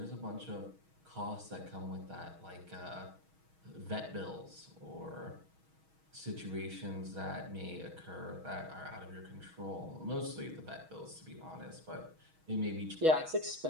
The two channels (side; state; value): left; late; 6.3 ms